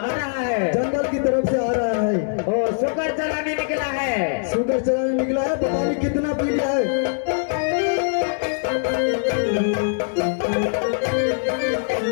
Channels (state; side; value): silent; right; digital silence